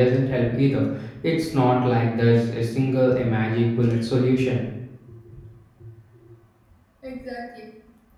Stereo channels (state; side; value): identical; both; correlation 1.00